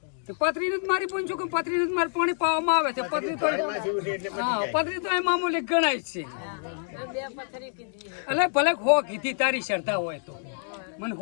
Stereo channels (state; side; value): silent; right; digital silence